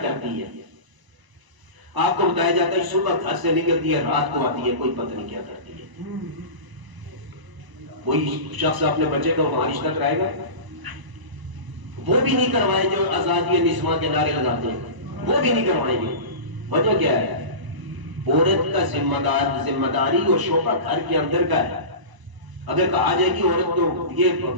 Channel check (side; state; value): left; late; 1.0 ms